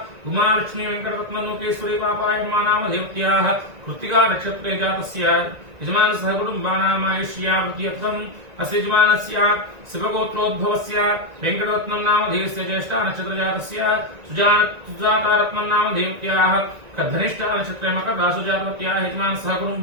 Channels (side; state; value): left; late; 1.9 ms